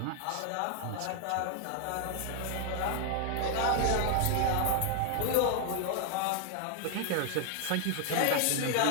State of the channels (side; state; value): both; different; correlation 0.00